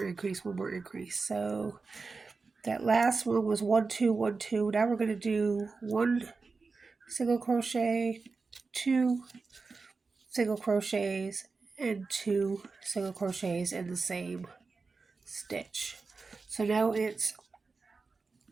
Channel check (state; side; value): quieter; left; 4.3 dB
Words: increase, one more increase. So that last one was 1, 2, 1, 2. Now we're going to do 1 single crochet, 2 single crochets, and 2 single crochets in the same stitch. So now it's